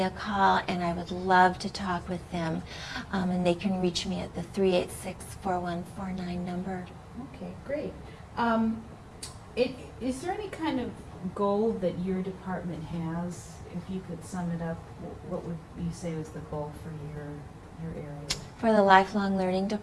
a call, and I would love to talk with them. And they can reach me at the 386-4149 number. Okay, great. Is there any kind of goal that your department has? If you could sum it up, what would you say was the goal for your area? For the lifelong learning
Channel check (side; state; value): both; identical; correlation 1.00